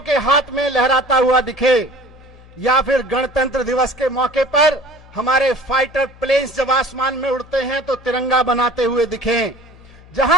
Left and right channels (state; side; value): noise; left; hum, 23 dB below the sound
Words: के हाथ में लहराता हुआ दिखे, या फिर गणतंत्र दिवस के मौके पर हमारे फाइटर प्लेन्स जब आसमान में उड़ते हैं तो तिरंगा बनाते हुए दिखें।